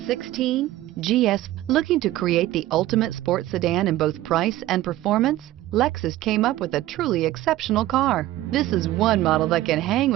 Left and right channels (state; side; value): quieter; left; 15.3 dB